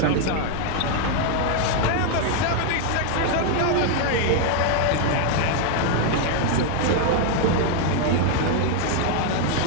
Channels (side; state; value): both; different; correlation 0.00